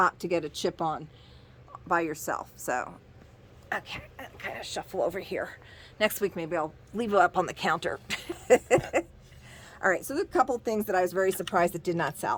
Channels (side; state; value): both; identical; correlation 1.00